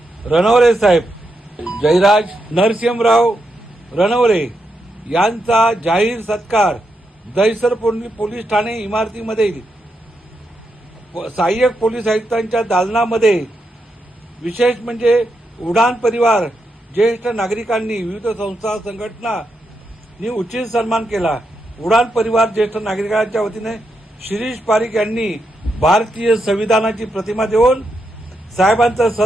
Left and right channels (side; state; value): both; normal; correlation 0.83